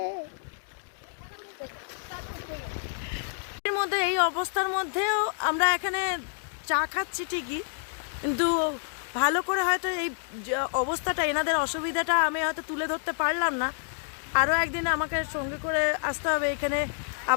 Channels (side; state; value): right; silent; digital silence